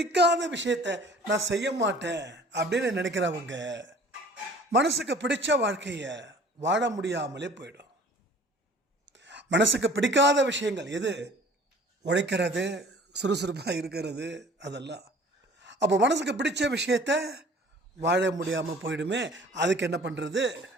விஷயத்தை நான் செய்ய மாட்டேன் அப்படின்னு நினைக்கிறவங்க மனசுக்கு பிடிச்ச வாழ்க்கையை வாழ முடியாமலே போயிடும். மனசுக்கு பிடிக்காத விஷயங்கள் எது? உழைக்கிறது, சுறுசுறுப்பாக இருக்கிறது, அதெல்லாம். அப்போ மனசுக்கு பிடிச்ச விஷயத்த வாழ முடியாமல் போயிடுமே. அதுக்கு என்ன பண்ணுறது?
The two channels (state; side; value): normal; both; correlation 0.49